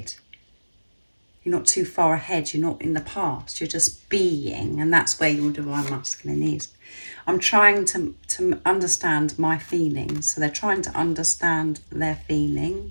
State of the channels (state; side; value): inverted; both; correlation -1.00